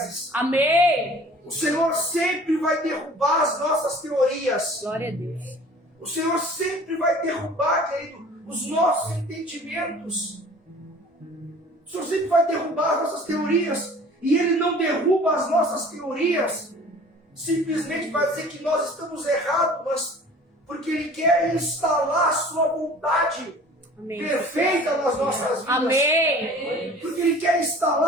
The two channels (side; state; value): both; normal; correlation 0.47